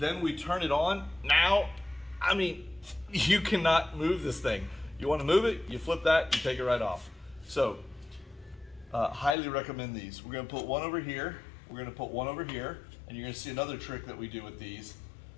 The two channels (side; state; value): right; drops out; at 9.3 s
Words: we turn it on. Now, I mean, you cannot move this thing. You want to move it, you flip that, you take it right off. So, highly recommend these. We're going to put one over here, we're going to put one over here, and you're going to see another trick that we do with these